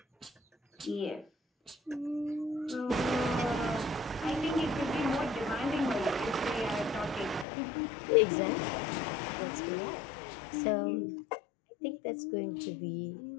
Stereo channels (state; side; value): drops out; right; at 7.5 s